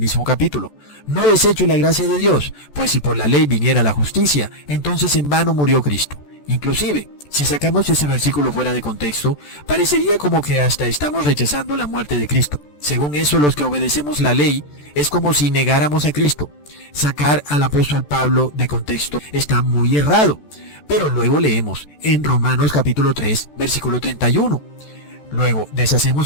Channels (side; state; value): right; late; 14 ms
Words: capítulo. No desecho la gracia de Dios, pues si por la ley viniera la justicia, entonces en vano murió Cristo. Inclusive, si sacamos ese versículo fuera de contexto, parecería como que hasta estamos rechazando la muerte de Cristo. Según eso, los que obedecemos la ley es como si negáramos a Cristo. Sacar al apóstol Pablo de contexto está muy errado. Pero luego leemos en Romanos capítulo 3, versículo 31. Luego,